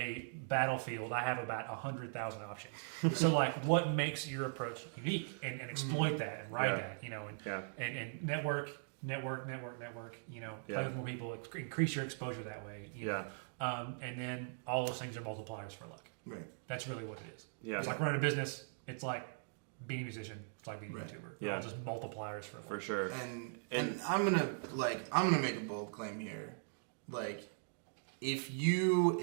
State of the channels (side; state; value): left; silent; digital silence